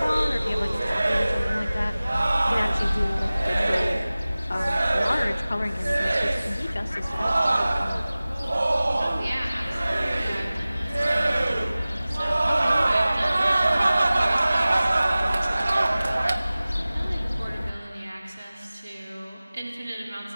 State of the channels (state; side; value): inverted; both; correlation -0.98